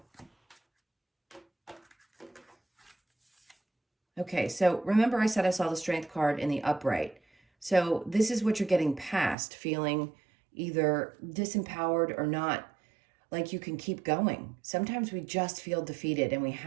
Okay, so remember I said I saw the Strength card in the upright. So this is what you're getting past, feeling either disempowered or not like you can keep going. Sometimes we just feel defeated and we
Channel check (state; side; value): drops out; left; at 9.3 s